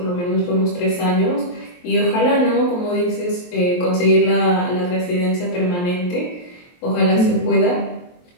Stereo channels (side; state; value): right; late; 23 ms